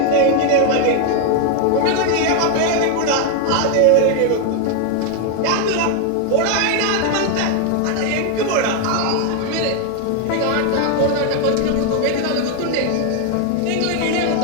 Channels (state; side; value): different; both; correlation 0.01